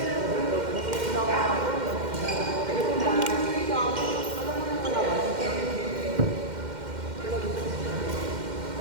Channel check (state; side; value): late; left; 2.1 ms